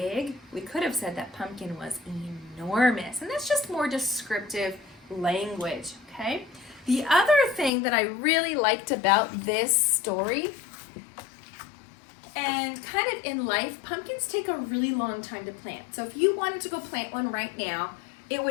we could have said that pumpkin was enormous. And that's just more descriptive language, okay? The other thing that I really liked about this story, and kind of in life, pumpkins take a really long time to plant. So if you wanted to go plant one right now, it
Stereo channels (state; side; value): drops out; right; at 7.7 s